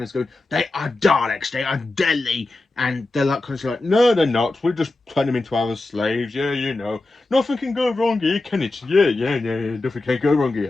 going, "They are Daleks, they are deadly," and they're like kind of like, "No, they're not. We just turn them into our slaves. Yeah, you know, nothing can go wrong here, can it? Yeah, nothing can go wrong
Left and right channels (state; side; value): quieter; right; 3.0 dB